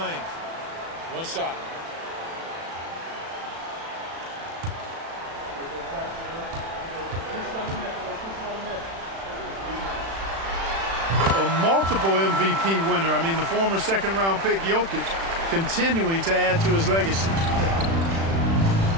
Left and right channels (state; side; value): late; left; 36 ms